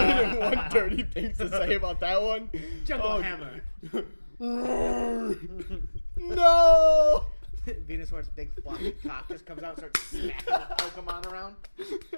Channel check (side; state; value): both; inverted; correlation -1.00